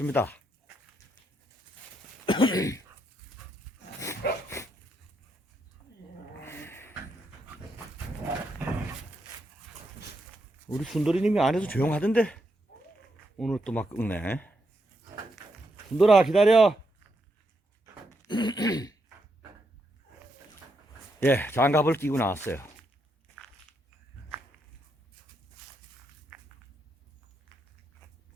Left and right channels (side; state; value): both; normal; correlation 0.80